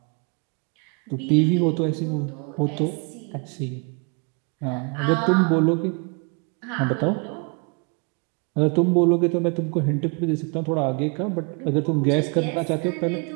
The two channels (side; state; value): left; quieter; 34.7 dB